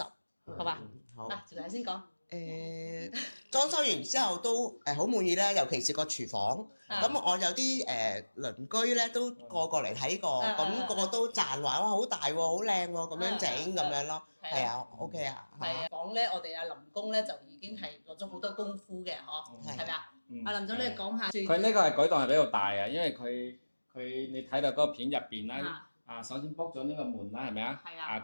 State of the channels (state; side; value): inverted; both; correlation -1.00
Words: 好嘛？好。嗱，趙太先講。裝修完之後都好滿意啦，尤其是個廚房。咁我有啲鄰居咧都過嚟睇過，咁個個都讚話哇好大喎，好靚喎，咁樣整咁樣咯。係啊，OK 啊。係啊，房咧我哋阿林工咧就已經係落咗好多功夫嘅，嗬，係咪啊？阿林總你講下。佢呢個係改動係比較大啊，因為佢你睇到嗰個片入邊啦。首先 book 咗呢個門啦，係咪啊？係啊。